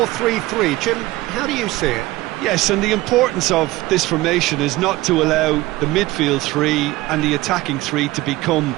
Jim, how do you see it? Yes, and the importance of this formation is not to allow the midfield three and the attacking three to become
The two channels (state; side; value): quieter; left; 18.7 dB